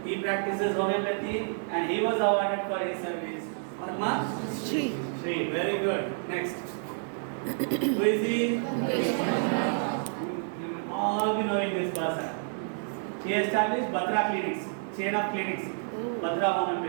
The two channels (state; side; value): silent; left; 58 dB below the other